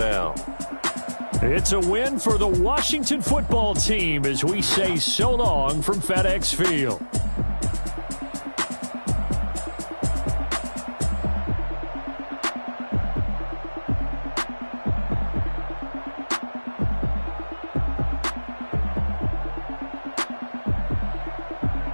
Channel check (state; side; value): inverted; both; correlation -1.00